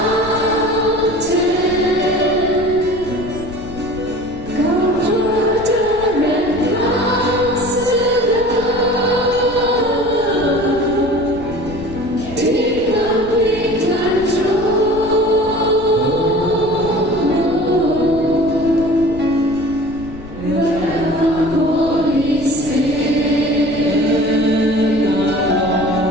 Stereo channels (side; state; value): left; noise; rumble, 16 dB below the sound